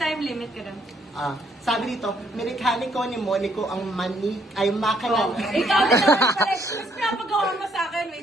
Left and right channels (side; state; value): both; normal; correlation 0.69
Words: limit ka doon. Sabi dito, mekaniko ni Monico ang ay makina. Oh, ikaw din naman pala. Mas pinapagawa mo sa akin.